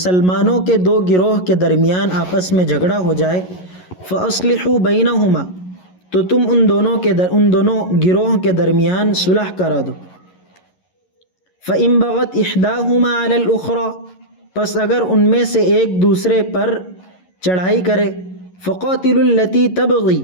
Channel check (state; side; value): late; right; 11 ms